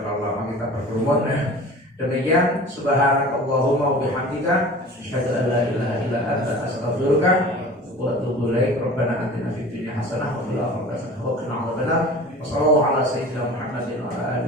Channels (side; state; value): both; normal; correlation 0.40